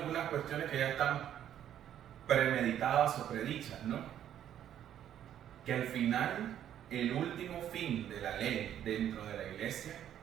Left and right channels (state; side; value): quieter; left; 10.6 dB